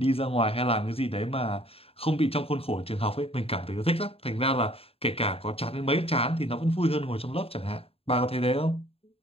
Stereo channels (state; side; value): late; right; 0.28 ms